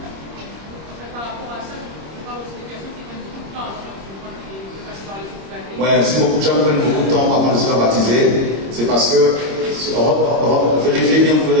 Voilà. Ouais, si beaucoup de gens prennent beaucoup de temps avant de se faire baptiser, c'est parce que vérifiez bien, vous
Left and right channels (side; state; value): left; late; 26 ms